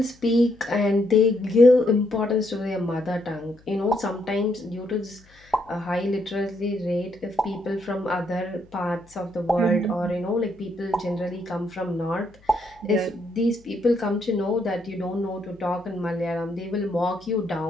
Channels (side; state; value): left; noise; hum, 28 dB below the sound